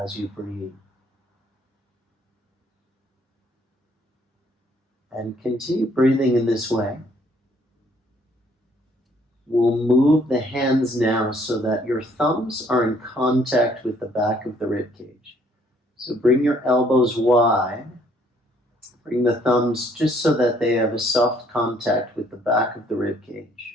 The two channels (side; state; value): both; normal; correlation 0.64